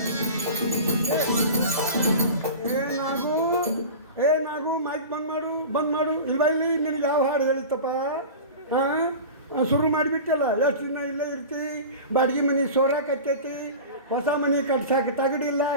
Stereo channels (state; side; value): inverted; both; correlation -0.33